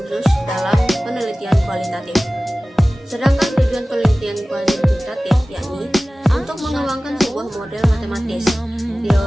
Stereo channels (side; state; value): both; normal; correlation 0.97